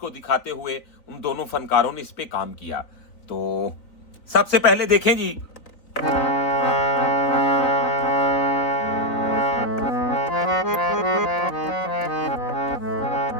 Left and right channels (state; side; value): late; right; 4.0 ms